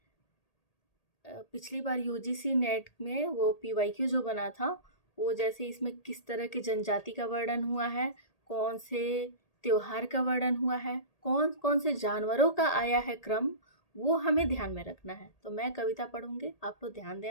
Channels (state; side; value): late; right; 1.8 ms